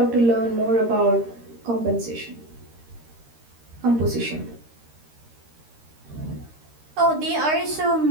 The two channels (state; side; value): late; left; 13 ms